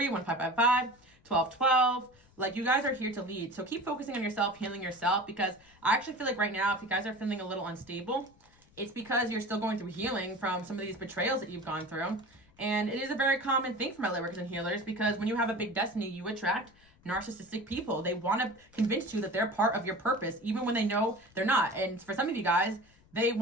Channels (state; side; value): noise; left; rumble, 29 dB below the sound